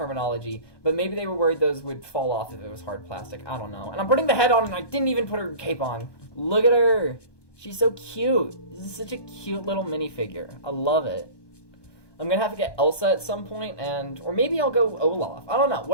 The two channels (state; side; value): late; right; 1.2 ms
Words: but maybe they were worried those would fall off if it was hard plastic. I don't know. And I'm putting the head on and I didn't even put her cape on. Look at her. She's so cute. This is such a cute little minifigure. I love it. I'm gonna have to get Elsa at some point, or maybe I'll go Olaf. I don't know.